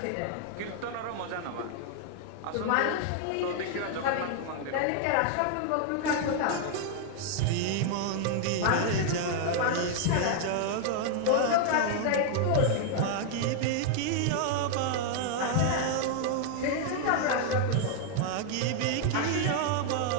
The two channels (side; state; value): both; different; correlation 0.00